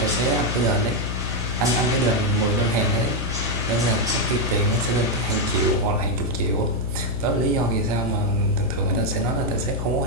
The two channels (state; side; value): noise; left; hum, 4 dB below the sound